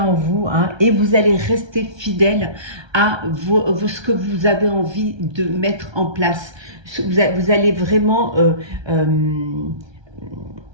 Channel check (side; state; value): left; late; 1.3 ms